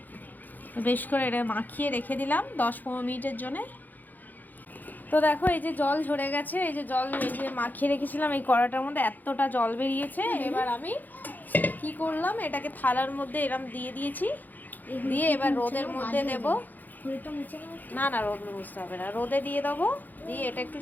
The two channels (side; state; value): right; late; 0.084 ms